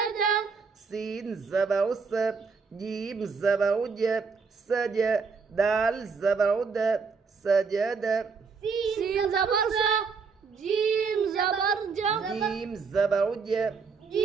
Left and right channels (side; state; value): left; quieter; 5.1 dB